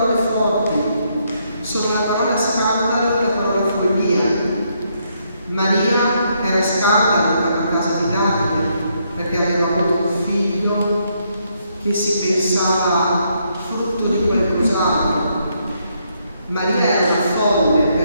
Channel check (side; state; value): both; inverted; correlation -0.75